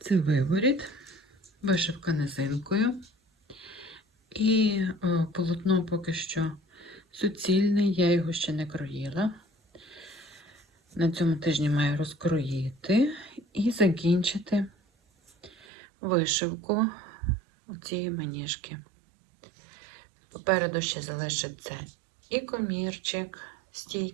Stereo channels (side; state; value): left; drops out; at 15.7 s